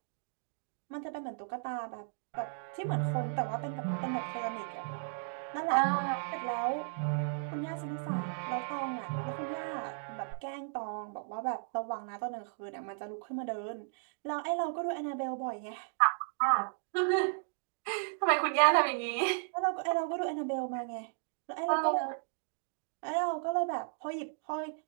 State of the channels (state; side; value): silent; left; digital silence